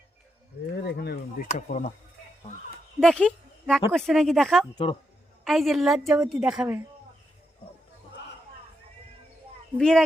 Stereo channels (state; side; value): normal; both; correlation 0.83